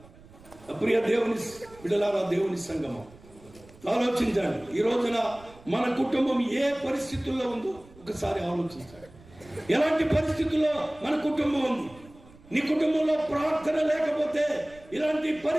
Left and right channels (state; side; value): noise; right; rumble, 23 dB below the sound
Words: ప్రియ దేవుని బిడ్డలారా, దేవుని సంగమం, ఆలోచించండి. ఈ రోజున మన కుటుంబం ఏ పరిస్థితుల్లో ఉందో ఒకసారి ఆలోచించండి. ఎలాంటి పరిస్థితుల్లో మన కుటుంబం ఉంది? నీ కుటుంబంలో ప్రార్థన లేకపోతే ఇలాంటి